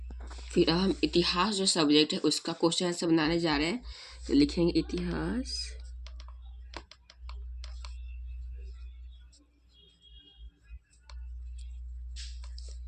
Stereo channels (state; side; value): identical; both; correlation 1.00